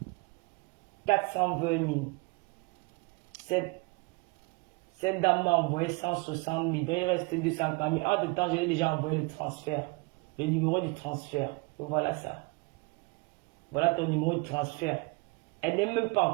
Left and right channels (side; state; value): left; quieter; 27.5 dB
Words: 000. Cette dame m'a envoyé 160 000. Donc il restait 240 000. Entre temps, j'ai déjà envoyé le transfert. Le numéro du transfert. Voilà ça. Voilà ton numéro de transfert. Elle n'est même pas